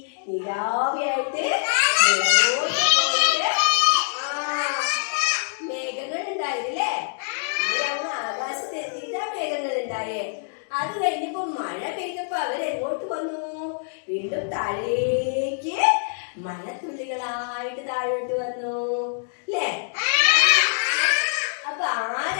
നിലാവിയായിട്ട് മേഘങ്ങൾ ഉണ്ടായിരുന്നില്ലേ. ഇവരങ്ങ് ആകാശത്ത് എത്തിയിട്ടാ മേഘങ്ങൾ ഉണ്ടായേ. അത് കഴിഞ്ഞപ്പോ മഴ പെയ്തപ്പോ അവരെങ്ങോട്ട് വന്നു? വീണ്ടും താഴേക്ക് മഴത്തുള്ളികളായിട്ട് താഴോട്ട് വന്നു അല്ലേ. അപ്പൊ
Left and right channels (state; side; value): silent; right; digital silence